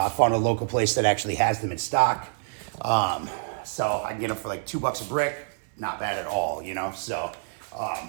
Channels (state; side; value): silent; left; 60 dB below the other